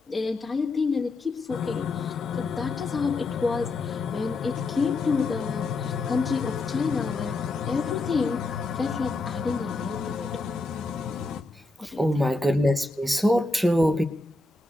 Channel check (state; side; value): quieter; right; 3.1 dB